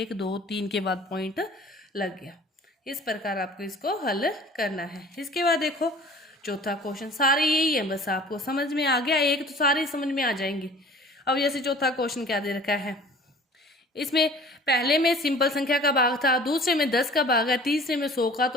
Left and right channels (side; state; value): both; normal; correlation 0.46